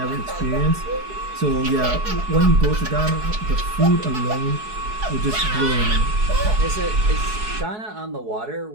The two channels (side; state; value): left; late; 4.7 ms